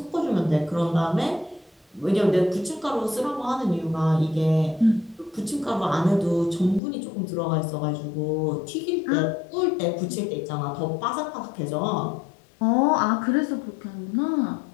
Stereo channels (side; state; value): right; drops out; at 6.8 s